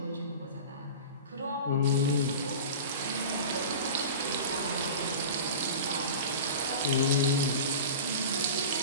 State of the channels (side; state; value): both; inverted; correlation -0.32